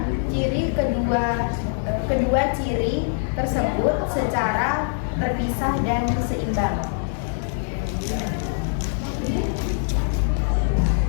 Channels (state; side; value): silent; right; digital silence